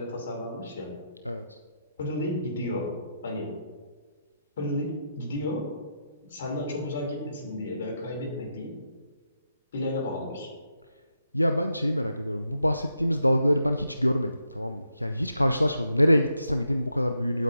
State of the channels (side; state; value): both; inverted; correlation -0.83